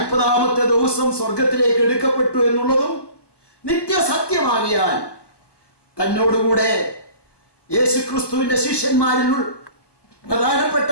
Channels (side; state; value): right; late; 1.2 ms